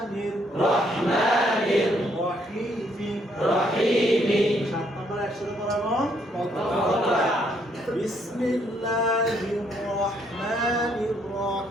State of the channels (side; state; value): both; normal; correlation 0.70